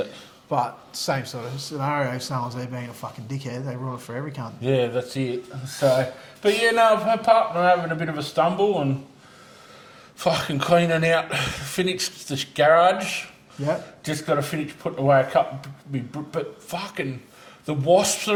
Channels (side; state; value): both; identical; correlation 1.00